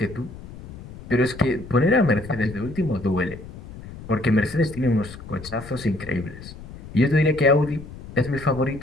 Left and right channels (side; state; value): left; noise; rumble, 15 dB below the sound